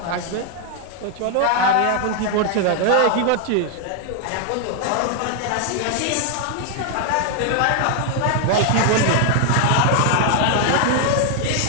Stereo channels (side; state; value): both; different; correlation 0.00